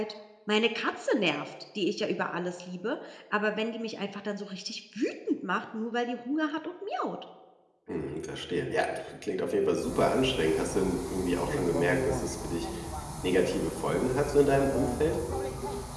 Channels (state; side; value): identical; both; correlation 1.00